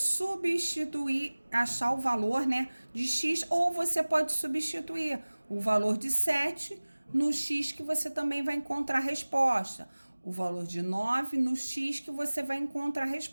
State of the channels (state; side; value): inverted; both; correlation -1.00